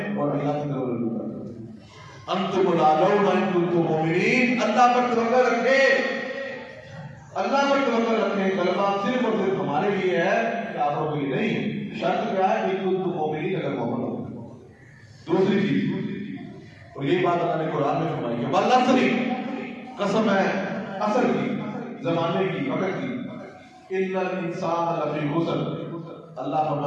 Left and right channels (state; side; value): identical; both; correlation 1.00